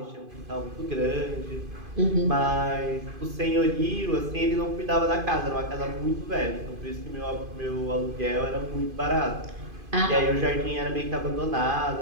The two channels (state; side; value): late; left; 2.5 ms